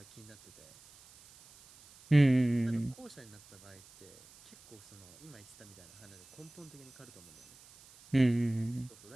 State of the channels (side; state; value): right; noise; hiss, 23 dB below the sound